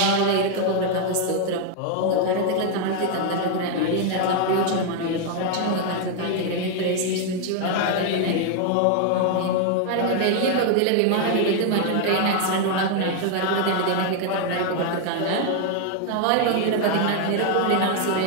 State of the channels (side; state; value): both; different; correlation 0.00